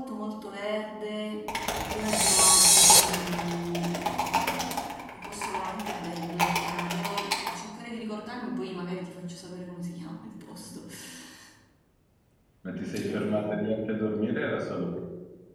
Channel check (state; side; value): identical; both; correlation 1.00